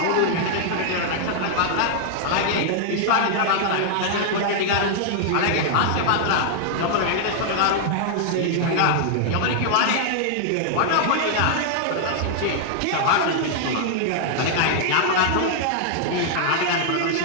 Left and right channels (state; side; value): different; both; correlation -0.01